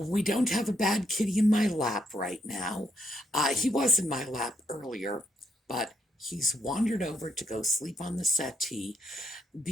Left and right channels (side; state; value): both; normal; correlation 0.76